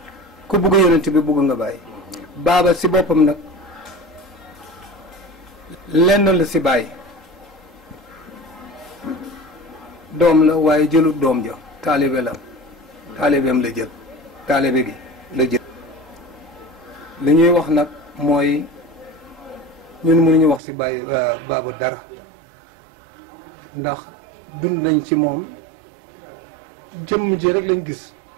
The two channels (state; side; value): drops out; left; at 20.6 s